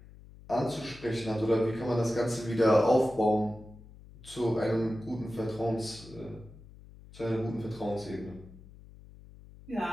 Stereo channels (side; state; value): left; noise; hum, 20 dB below the sound